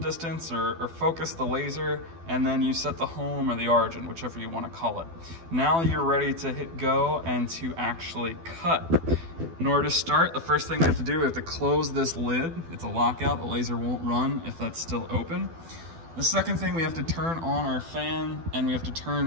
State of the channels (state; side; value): late; left; 12 ms